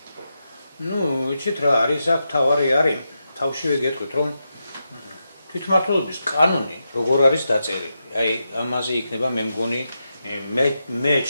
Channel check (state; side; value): inverted; both; correlation -0.87